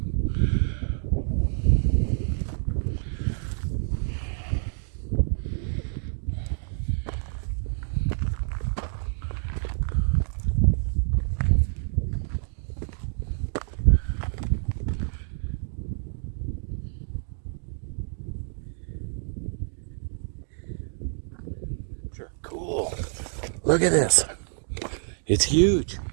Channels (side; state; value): left; silent; digital silence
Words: Cool. Look at this. It's huge.